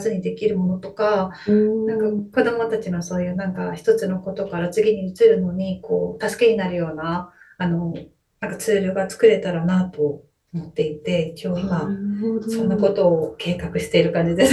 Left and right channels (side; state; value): both; identical; correlation 1.00